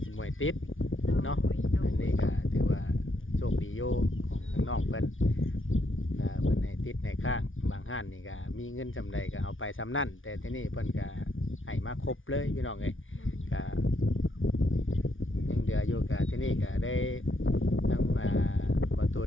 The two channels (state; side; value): late; right; 0.57 ms